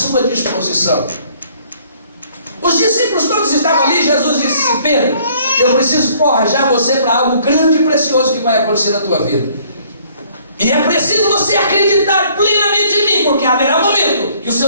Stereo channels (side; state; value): both; inverted; correlation -0.60